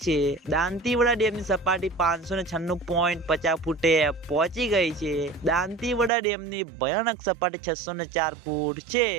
છે। દાંતીવાડા ડેમની સપાટી 596.50 ફૂટે પહોંચી ગઈ છે। દાંતીવાડા ડેમની ભયાનક સપાટી 604 ફૂટ છે।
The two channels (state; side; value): drops out; left; at 6.1 s